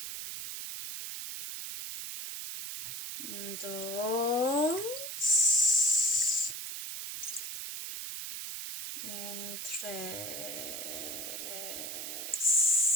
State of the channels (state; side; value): noise; right; hiss, 6 dB below the sound